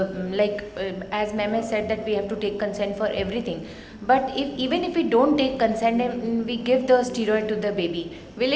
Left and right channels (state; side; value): identical; both; correlation 1.00